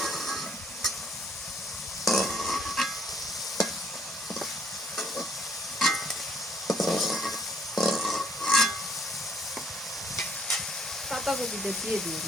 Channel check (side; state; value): both; normal; correlation 0.65